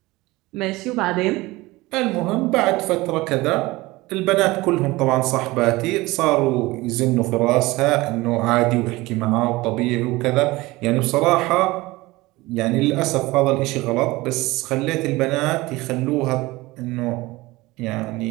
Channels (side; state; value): left; quieter; 20.6 dB